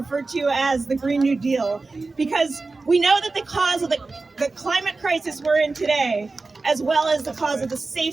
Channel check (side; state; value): left; quieter; 3.7 dB